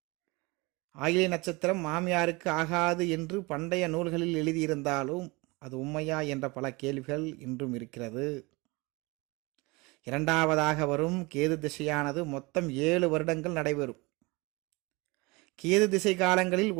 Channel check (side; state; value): left; quieter; 25.2 dB